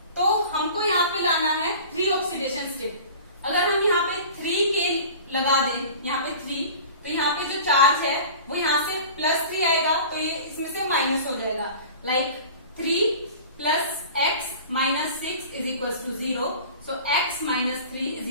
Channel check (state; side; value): inverted; both; correlation -0.40